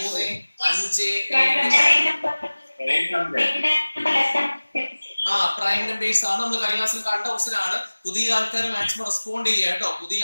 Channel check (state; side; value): inverted; both; correlation -1.00